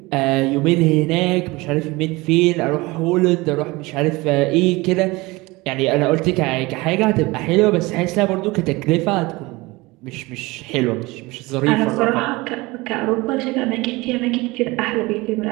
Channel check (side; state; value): left; quieter; 22.4 dB